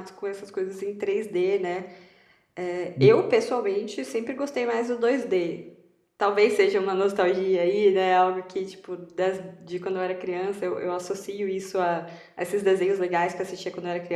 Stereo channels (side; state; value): both; identical; correlation 1.00